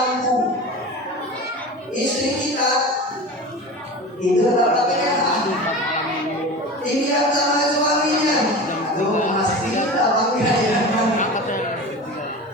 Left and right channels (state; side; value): normal; both; correlation 0.32